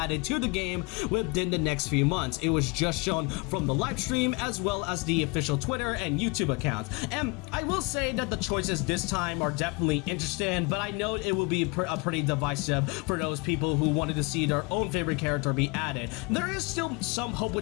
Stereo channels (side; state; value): right; quieter; 28.0 dB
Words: to the game within the next few months. It was just shown from the live stream as well as the official Twitter and YouTube accounts. And I will say that the choices this time are definitely interesting, but I know it will be pretty divisive for those people who wanted to see their own favorite character be added. There is still some hope